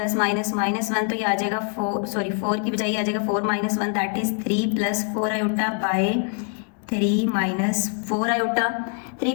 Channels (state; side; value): quieter; right; 38.9 dB